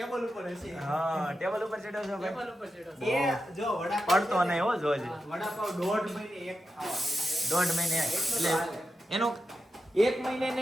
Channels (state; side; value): normal; both; correlation 0.89